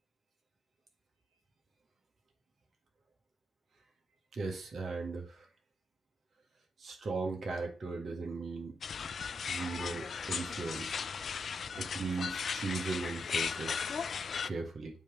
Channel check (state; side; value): normal; both; correlation 0.81